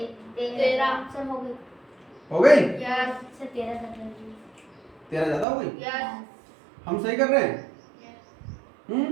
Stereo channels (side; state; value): left; drops out; at 5.5 s